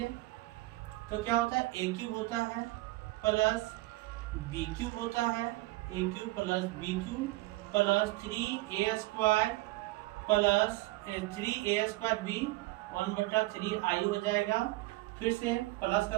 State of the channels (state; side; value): quieter; left; 19.8 dB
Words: तो क्या होता है, a क्यूब होता है प्लस बी क्यूब होता है, a cube plus b cube plus 3a² plus 3a² b 1/3 i हो जाएगा। फिर से प्लस